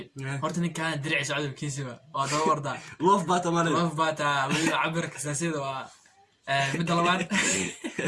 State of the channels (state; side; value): identical; both; correlation 1.00